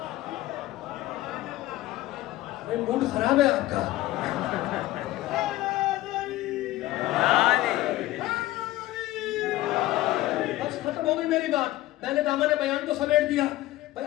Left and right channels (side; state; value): right; quieter; 16.4 dB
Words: موڈ خراب ہے آپ کا. بس ختم ہو گئی میری بات. میں نے دامن بیان کو سمیٹ دیا. بھائی